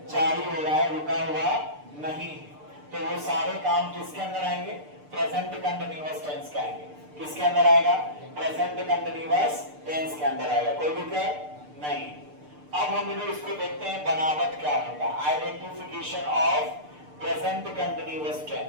जारी हो रहा है, रुका हुआ नहीं। तो वो सारे काम किसके अंदर आएंगे? प्रेजेंट कंटिन्यूअस टेंस के आएंगे। किसके अंदर आएगा? प्रेजेंट कंटिन्यूअस टेंस के अंदर आएगा। कोई दिक्कत नहीं। अब हम लोग इसको देखते हैं बनावट क्या होगा। Identification of present continuous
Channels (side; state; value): left; late; 6.7 ms